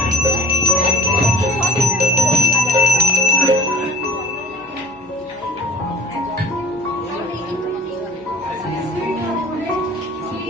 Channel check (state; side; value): noise; left; hum, 28 dB below the sound